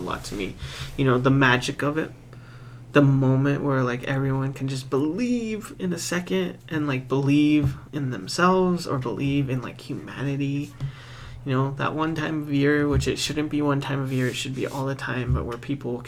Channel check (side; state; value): both; identical; correlation 1.00